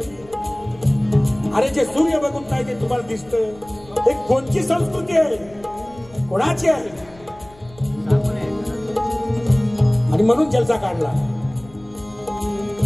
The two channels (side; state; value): left; noise; rumble, 23 dB below the sound